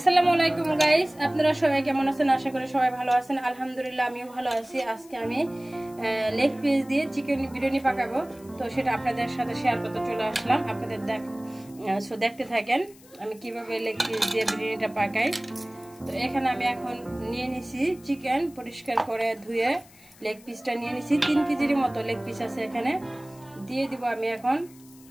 আলাইকুম গাইস, আপনারা সবাই কেমন আছেন? আশা করি সবাই ভালো আছেন। আলহামদুলিল্লাহ আমিও ভালো আছি। আজকে আমি লেগ পিস দিয়ে চিকেন বিরিয়ানি পাকাবো, তো সেটা আপনাদের সাথে শেয়ার করতে চলে আসলাম। আপনাদের দেখতে থাকেন আমি কিভাবে লেগ পিস দিয়ে বিরিয়ানিটা পাকাই। তো এখানে আমি এখন নিয়ে নিছি চিকেন, পরিষ্কার করে ধুয়ে লেগ পিসটা নিয়ে নিছি। 3 কেজির মতো লেগ পিস আছে এখানে। দিয়ে দিব আমি এখন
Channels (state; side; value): noise; left; hiss, 25 dB below the sound